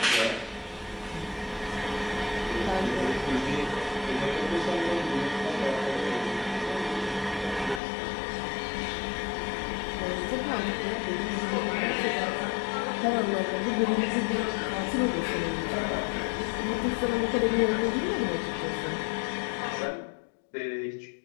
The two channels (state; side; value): drops out; right; at 7.8 s